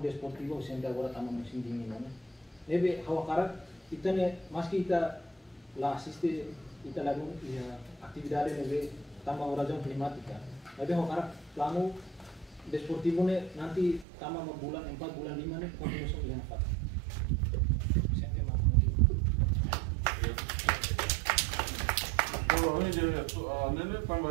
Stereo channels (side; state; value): left; drops out; at 14.1 s